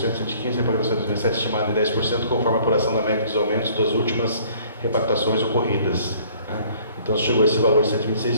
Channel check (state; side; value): inverted; both; correlation -0.56